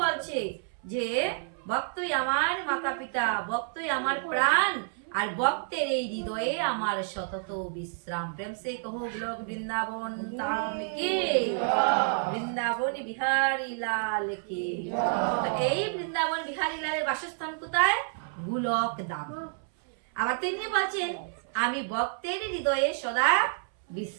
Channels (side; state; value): left; silent; 58 dB below the other